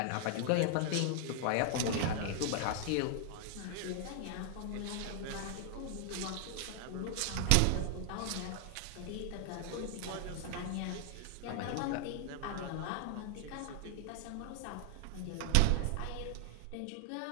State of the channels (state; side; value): different; both; correlation 0.00